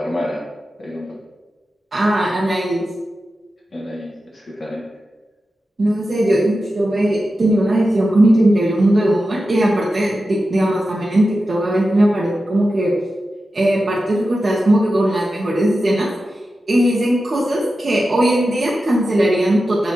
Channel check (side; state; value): both; normal; correlation 0.92